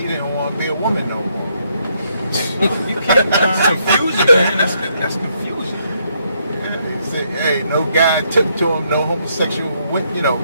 didn't want to be a woman no more. You can't. That's confusion, man. That's confusion. He said, hey, no guy took to him, no homosexual,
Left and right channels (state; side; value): inverted; both; correlation -0.74